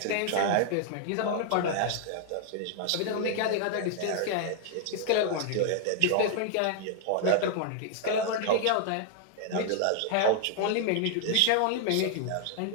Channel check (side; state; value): both; different; correlation 0.00